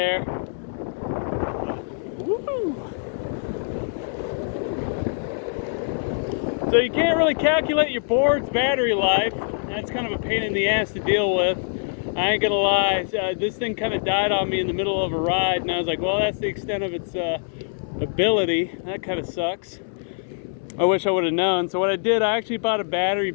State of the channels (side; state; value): right; silent; 63 dB below the other